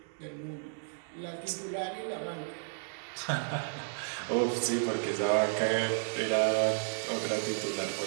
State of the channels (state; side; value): silent; left; digital silence